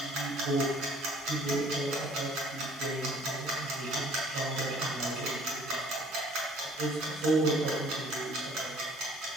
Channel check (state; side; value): noise; left; hiss, 22 dB below the sound